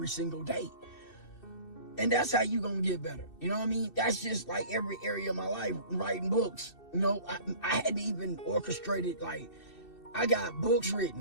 single day. And that's how you gonna get better. You know what I mean? That's just like every area of my life, writing books. You know, I hadn't even orchestrated, like, I got books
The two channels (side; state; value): right; late; 2.6 ms